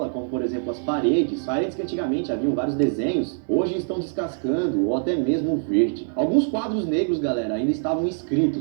como por exemplo as paredes que antigamente haviam vários desenhos, hoje estão descascando ou até mesmo verde. Alguns quadros negros, galera, ainda estavam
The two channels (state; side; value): silent; left; 63 dB below the other